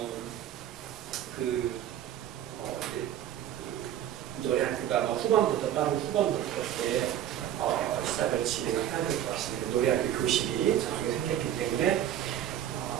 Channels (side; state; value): left; quieter; 11.3 dB